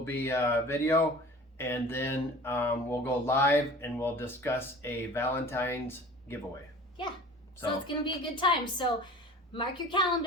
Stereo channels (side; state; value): both; normal; correlation 0.42